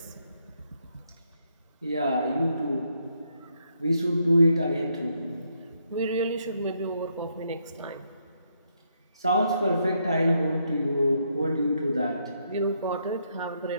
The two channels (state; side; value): inverted; both; correlation -0.76